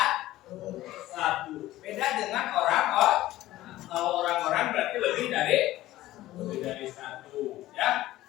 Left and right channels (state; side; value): quieter; right; 15.7 dB